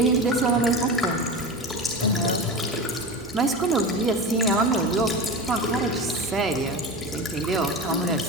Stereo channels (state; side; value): normal; both; correlation 0.27